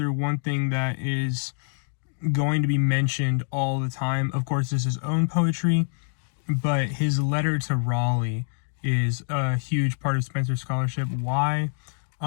one thing that is going to be mentioned all the time, of course, is his own poetry, but his letter to Raleigh is a huge part of Spenser scholarship. Why?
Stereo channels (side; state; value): right; silent; digital silence